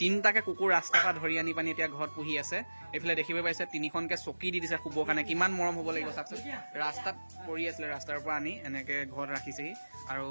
3টাকে কুকুৰ ৰাস্তাৰ পৰা ধৰি আনি পানি এতিয়া ঘৰত পুহি আছে এইফালে দেখিব পাইছে 3খনকে চকী দি দিছে শুবৰ কাৰণে কিমান মৰম হ'ব লাগিব চাওকচোন ৰাস্তাত পৰি আছিলে ৰাস্তাৰ পৰা আনি এনেকে ঘৰত ৰাখিছেহি আৰু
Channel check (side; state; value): both; inverted; correlation -1.00